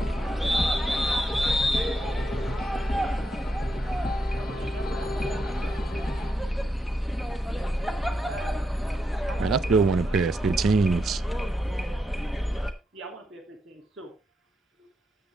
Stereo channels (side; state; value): both; normal; correlation 0.83